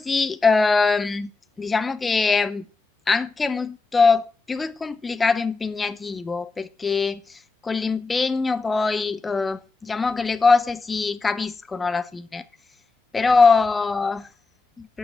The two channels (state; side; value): quieter; right; 4.1 dB